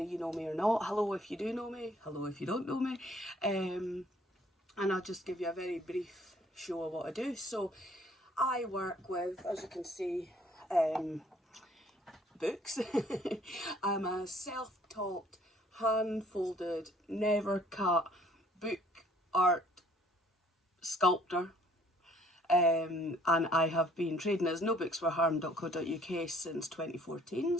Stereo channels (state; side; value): normal; both; correlation 0.59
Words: you know me or not. Hello if you do know me, hello if you don't know me. And I'll just give you a very brief show of what I do. So I work with, as you can see, books. I'm a self-taught, hand-folded, never cut book art sculptor, and I have been trading as nobooksforharm.co.uk since 2014,